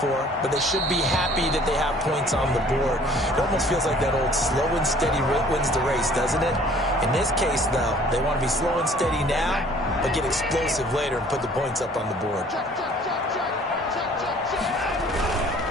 but they should be happy that they have points on the board. It almost feels like that old slow and steady wins the race, doesn't it? In this case, though, they want to be slow and steady now, but get explosive later and put the points up on the board.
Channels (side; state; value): both; normal; correlation 0.54